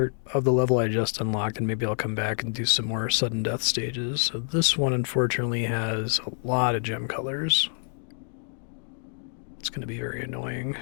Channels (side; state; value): right; silent; 58 dB below the other